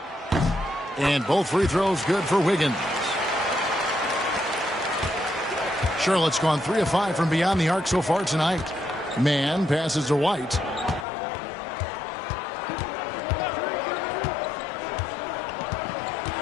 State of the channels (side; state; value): right; drops out; at 11.1 s